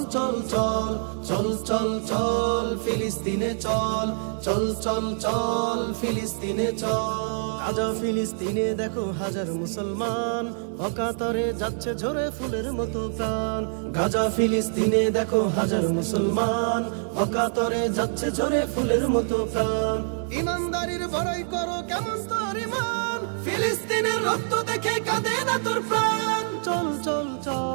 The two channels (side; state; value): left; silent; digital silence